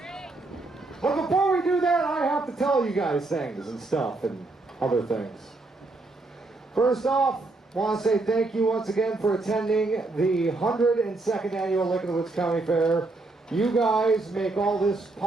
But before we do that, I have to tell you guys things and stuff and other things. First off, I want to say thank you once again for attending the 102nd Annual Lake of the Woods County Fair. You guys make all this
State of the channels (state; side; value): quieter; left; 3.2 dB